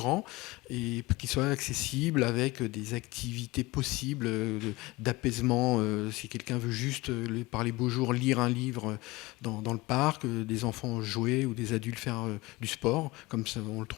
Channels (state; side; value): quieter; right; 21.4 dB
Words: et qu'il soit accessible avec des activités possibles d'apaisement. Si quelqu'un veut juste, par les beaux jours, lire un livre dans le parc, des enfants jouer ou des adultes faire du sport, comme ça, on le